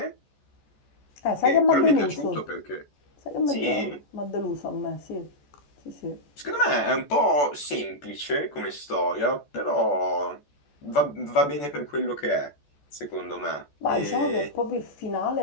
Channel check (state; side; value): late; right; 14 ms